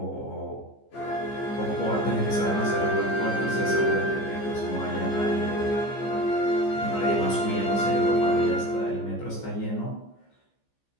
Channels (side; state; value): right; late; 15 ms